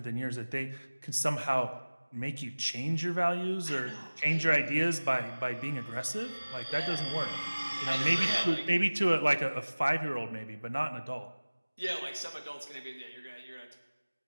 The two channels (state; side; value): inverted; both; correlation -1.00